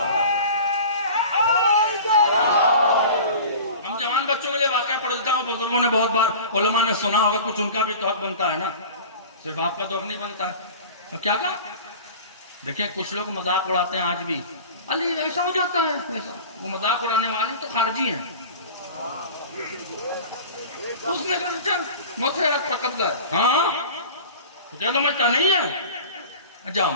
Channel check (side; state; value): both; inverted; correlation -0.38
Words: ہم جوان بچوں کے لیے واقعہ پڑھ دیتا ہوں. بزرگوں نے بہت بار، علماء نے سنا ہوگا، کچھ ان کا بھی تو حق بنتا ہے نا، صرف آپ کا تو حق نہیں بنتا ہے. اور کیا کہا؟ دیکھیں کچھ لوگ مذاق اڑاتے ہیں آج بھی، علی ایسا ہو جاتا ہے ایسا. وہ مذاق اڑانے والے تو خارجی ہیں. اس نے کہا اچھا موت پر قبضہ ہے. ہاں تجھے سمجھتا نہیں ہے، جاؤ